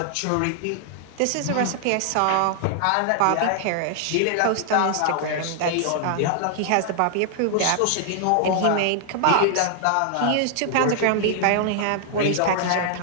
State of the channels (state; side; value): different; both; correlation -0.01